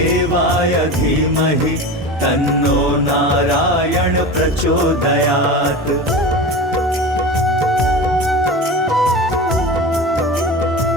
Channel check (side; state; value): both; normal; correlation 0.29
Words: धीमहि तन्नो नारायण प्रचोदयात्।